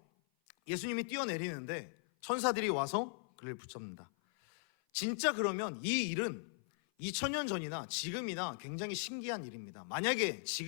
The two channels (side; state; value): right; silent; 52 dB below the other